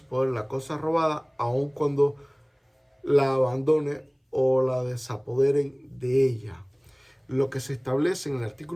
poder la cosa robada, aun cuando la abandone o la desapoderen de ella. Lo que se establece en el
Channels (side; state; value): both; identical; correlation 1.00